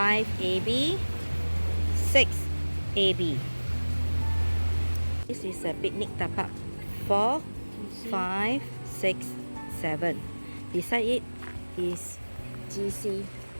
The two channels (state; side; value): inverted; both; correlation -1.00